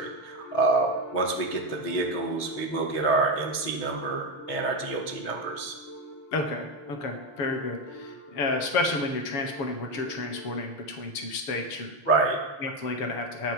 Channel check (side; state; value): right; late; 7.1 ms